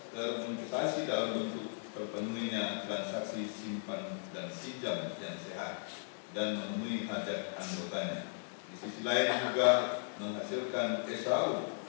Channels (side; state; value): right; silent; 53 dB below the other